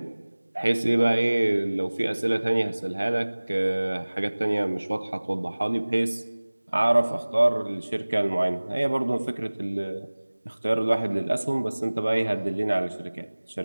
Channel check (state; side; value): inverted; both; correlation -1.00